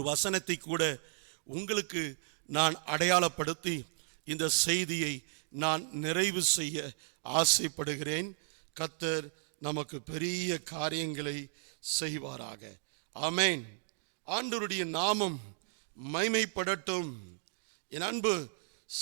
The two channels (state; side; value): silent; left; digital silence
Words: வசனத்தை கூட உங்களுக்கு நான் அடையாளப்படுத்தி இந்த செய்தியை நான் நிறைவு செய்ய ஆசைப்படுகிறேன். கர்த்தர் நமக்கு பெரிய காரியங்களை செய்வாராக. ஆமென். ஆண்டவருடைய நாமம் மைமைப்படட்டும். என் அன்பு